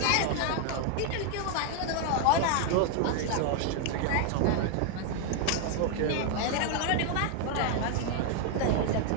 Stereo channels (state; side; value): different; both; correlation 0.00